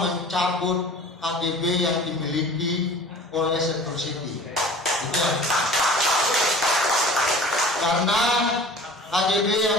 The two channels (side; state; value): both; normal; correlation 0.43